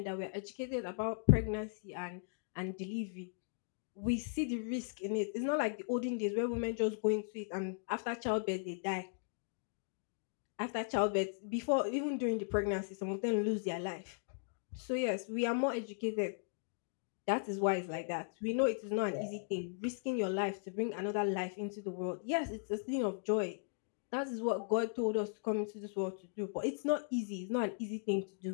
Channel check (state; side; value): silent; right; digital silence